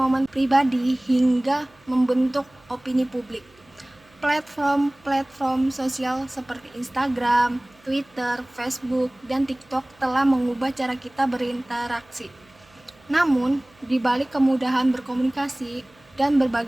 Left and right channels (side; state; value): right; noise; hum, 29 dB below the sound